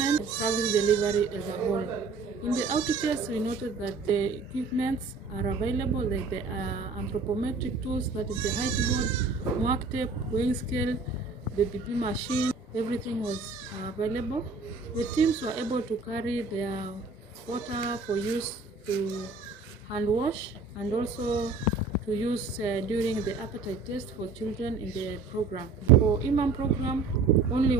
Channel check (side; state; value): left; quieter; 4.2 dB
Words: service delivery as a whole. In the outreaches, we noted that the equipments are available, like the anthropometric tools, that is the height board, mark tape, weighing scale, the BP machine, everything was available. The teams were able to carry their water for use to hand wash and also to use during the appetite test for children in the program. For Imam program, only